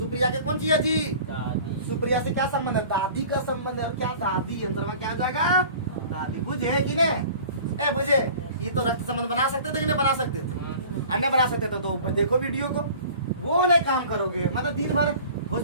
के कौन सी है जी? दादी। सुप्रिया से क्या संबंध है? दादी का संबंध है। क्या दादी अंतर में क्या जाएगा? दादी। बुझे कि नहीं? ए बुझे, ये तो रक्त संबंध बना सकते थे कि नहीं बना सकते थे? अन्य बना सकते थे। तो देखो वीडियो को, वो नहीं काम करोगे, मतलब दिन भर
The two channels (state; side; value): inverted; both; correlation -0.44